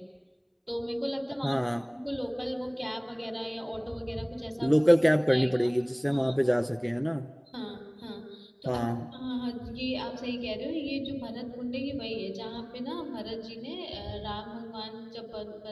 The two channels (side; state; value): both; identical; correlation 1.00